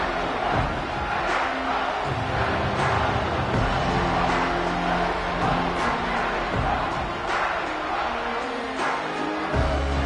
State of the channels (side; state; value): both; identical; correlation 1.00